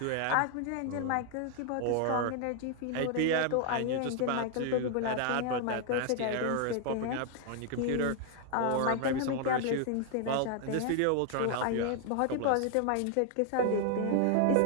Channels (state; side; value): different; both; correlation 0.00